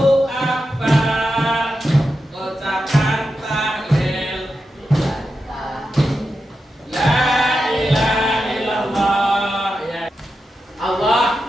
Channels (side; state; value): both; normal; correlation 0.89